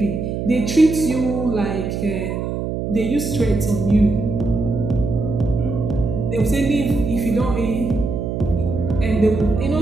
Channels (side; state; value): right; noise; hum, 3 dB below the sound